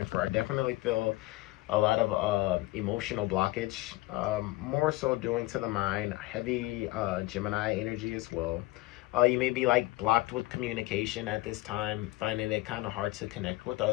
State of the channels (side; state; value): right; quieter; 19.1 dB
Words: for. I definitely feel a lot of emotional blockage, more so doing to the mind, heavy Gemini energy as well. You may be like blocked with communication at this time, finding it kind of hard to connect with